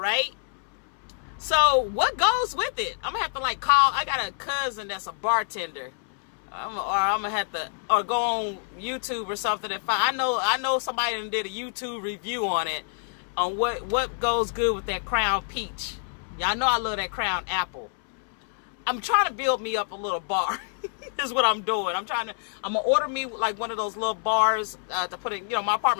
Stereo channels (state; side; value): silent; right; 60 dB below the other